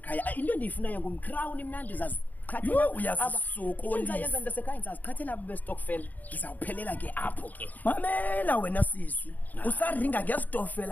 into endiyifunayo ngumcrown mna ndizazi uyazisokolisa yenza ndasekhaya ndizaziqhathela abo bestokfela ndizawuphelela ke apho ke. Mamela wena sisi usaringa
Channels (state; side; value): late; right; 0.081 ms